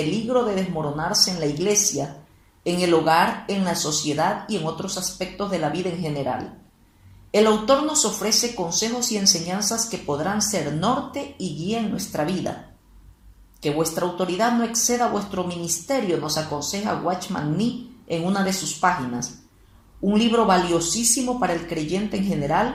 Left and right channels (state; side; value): identical; both; correlation 1.00